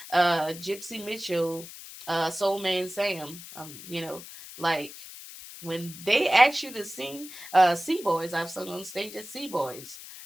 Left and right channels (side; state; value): left; noise; hiss, 14 dB below the sound